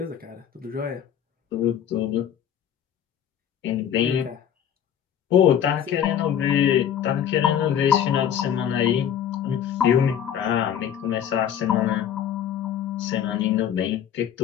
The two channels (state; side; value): quieter; right; 9.3 dB